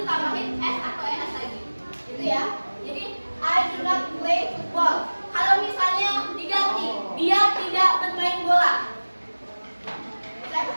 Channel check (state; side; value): inverted; both; correlation -1.00